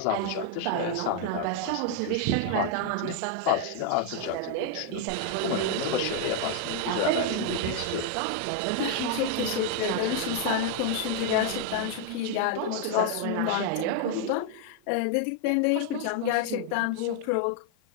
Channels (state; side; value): different; both; correlation 0.00